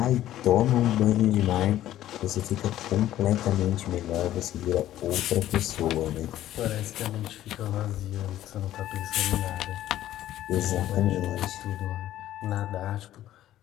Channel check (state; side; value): quieter; right; 13.2 dB